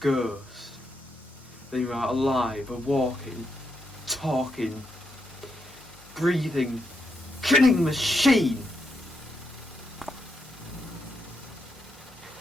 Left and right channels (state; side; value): normal; both; correlation 0.81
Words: than you are alive, a walking, talking, breathing, killing machine.